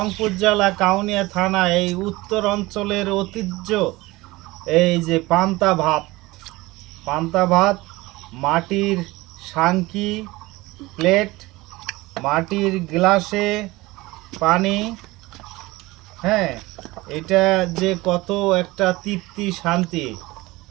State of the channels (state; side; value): quieter; left; 20.6 dB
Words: জেলা কাউনিয়া থানা এই উত্তর অঞ্চলের ঐতিহ্য এই যে পান্তা ভাত মাটির সাংকি প্লেট, মাটির গ্লাসে পানি। হ্যাঁ, এটা যে কত একটা তৃপ্তি শান্তি,